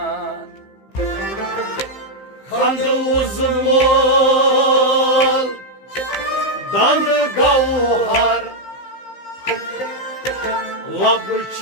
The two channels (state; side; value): late; right; 15 ms